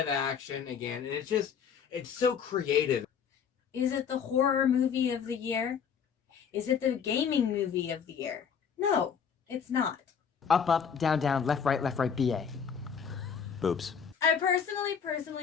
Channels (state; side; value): quieter; right; 7.0 dB